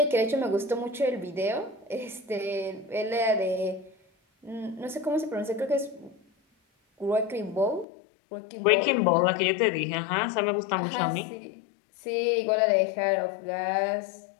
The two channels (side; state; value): right; drops out; at 7.9 s